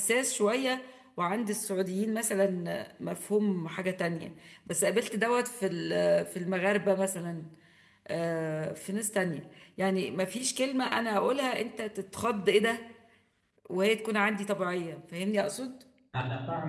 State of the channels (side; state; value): both; identical; correlation 1.00